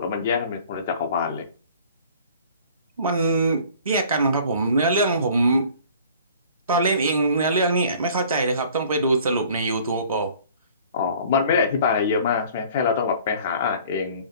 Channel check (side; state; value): both; inverted; correlation -0.51